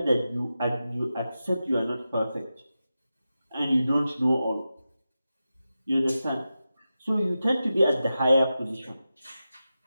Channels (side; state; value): both; inverted; correlation -0.92